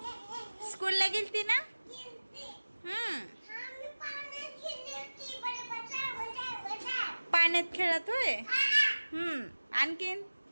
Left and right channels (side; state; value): both; inverted; correlation -1.00